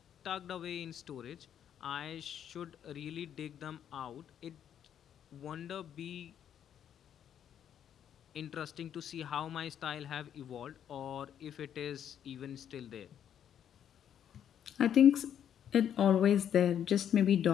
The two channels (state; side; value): quieter; right; 9.4 dB